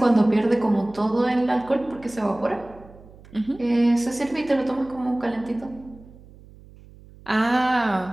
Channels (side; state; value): right; noise; hum, 22 dB below the sound